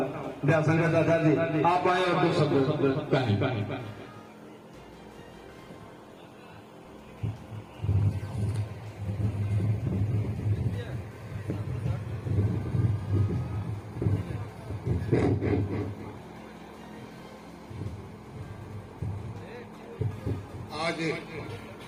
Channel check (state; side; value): identical; both; correlation 1.00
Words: दयाशंकर दादाजी, आप आए और दो शब्द कहें। आज